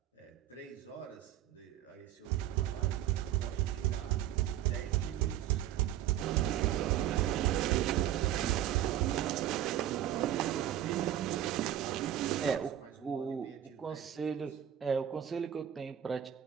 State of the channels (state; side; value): quieter; left; 11.3 dB